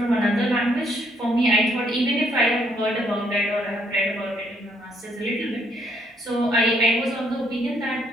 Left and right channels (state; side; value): normal; both; correlation 0.69